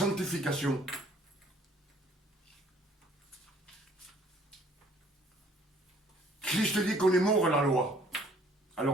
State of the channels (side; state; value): both; normal; correlation 0.58